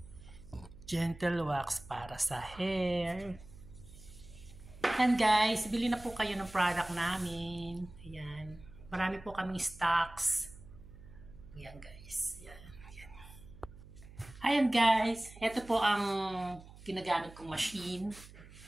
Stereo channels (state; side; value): noise; right; hum, 19 dB below the sound